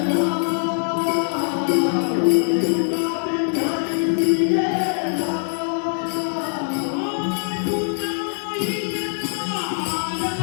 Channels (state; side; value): silent; right; 64 dB below the other